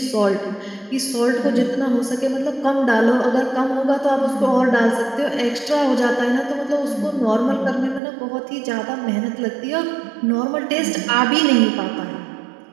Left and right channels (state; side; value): drops out; left; at 8.0 s